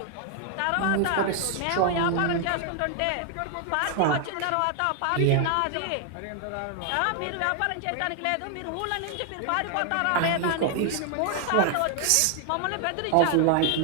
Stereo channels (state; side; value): different; both; correlation 0.00